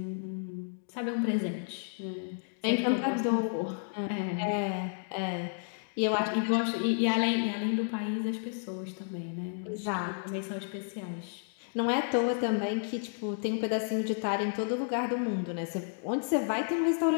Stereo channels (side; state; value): right; silent; digital silence